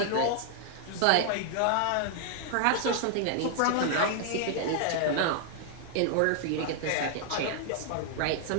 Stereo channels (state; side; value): different; both; correlation 0.00